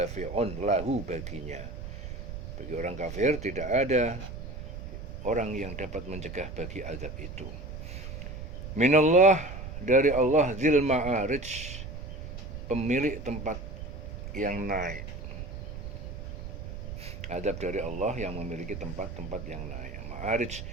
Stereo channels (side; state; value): right; noise; rumble, 8 dB below the sound